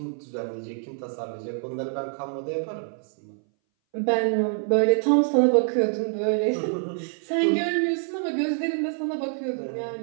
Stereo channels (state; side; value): silent; left; 59 dB below the other